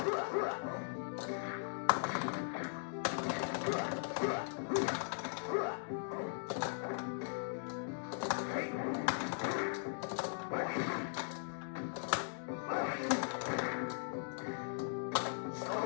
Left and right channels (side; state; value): right; silent; digital silence